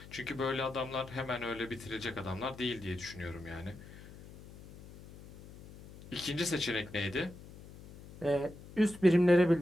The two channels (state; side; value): noise; left; hum, 17 dB below the sound